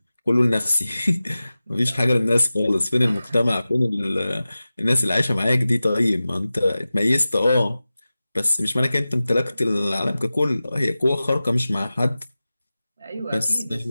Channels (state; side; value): inverted; both; correlation -0.96